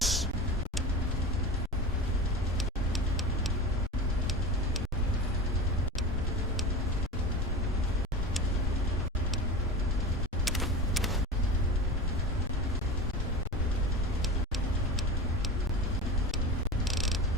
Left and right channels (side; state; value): both; normal; correlation 0.29